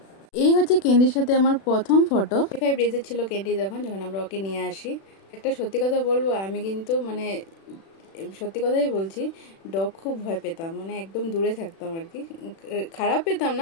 এই হচ্ছে ক্যান্ডির সাথে আমার প্রথম ফটো। 5 ডেজের ছিল ক্যান্ডি যখন আমরা ওকে নিয়ে আসি। একটা সত্যি কথা বলবো, আমি কিন্তু সত্যি কথাই বলছি, ডগ খুব ভয় পেতাম, একদম দূরে থাকতাম আর কি। খারাপ পেতাম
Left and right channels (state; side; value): late; right; 36 ms